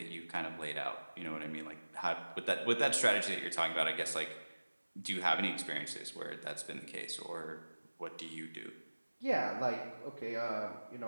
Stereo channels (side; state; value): both; inverted; correlation -1.00